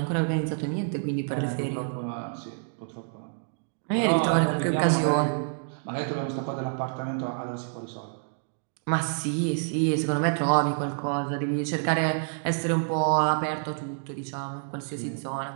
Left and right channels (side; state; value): left; silent; digital silence